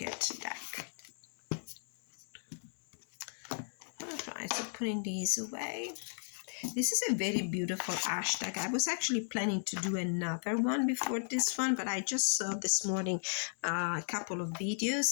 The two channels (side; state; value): right; silent; digital silence